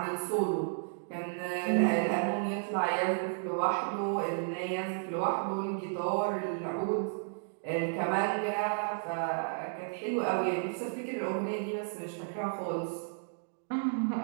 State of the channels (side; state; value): left; silent; digital silence